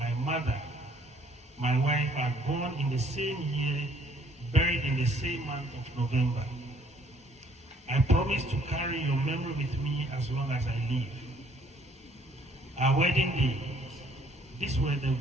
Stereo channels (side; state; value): both; normal; correlation 0.61